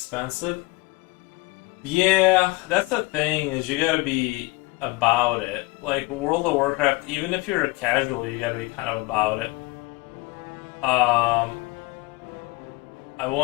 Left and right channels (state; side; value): quieter; right; 22.9 dB